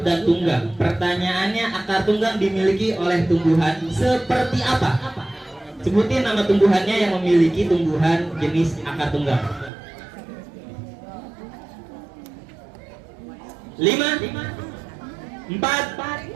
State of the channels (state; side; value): drops out; left; at 9.7 s